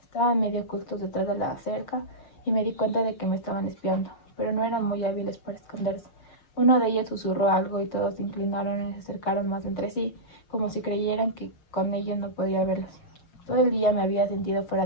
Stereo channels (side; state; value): right; late; 6.4 ms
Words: Estaban medio ocultos detrás de la cerca y me di cuenta de que me estaban espiando, pero no eran muy hábiles para esconderse. Uno de ellos susurró algo y todos se inclinaron y se acercaron más entre sí, como si creyeran que con ellos no podía verlos. Todo el día me había sentido